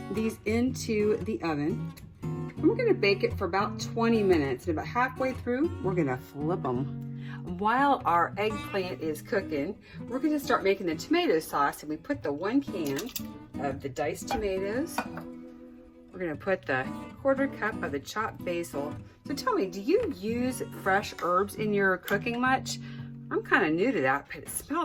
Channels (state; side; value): identical; both; correlation 1.00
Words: these into the oven. And we're gonna bake it for about 20 minutes. And about halfway through, we're gonna flip them. While our eggplant is cooking, we're gonna start making the tomato sauce, and we put the 1 can of the diced tomatoes. We're gonna put the 1/4 cup of the chopped basil. So tell me, do you use fresh herbs in your cooking much? I'm kind of new to that, but it